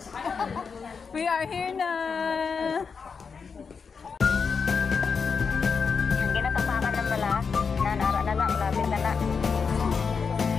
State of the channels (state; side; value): quieter; right; 5.6 dB